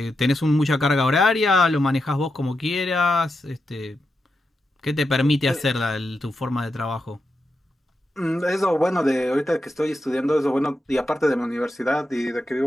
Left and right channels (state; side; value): normal; both; correlation 0.87